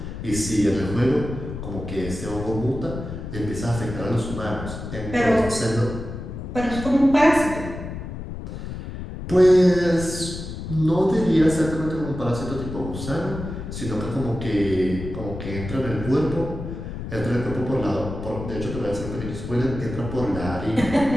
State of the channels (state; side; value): noise; left; rumble, 8 dB below the sound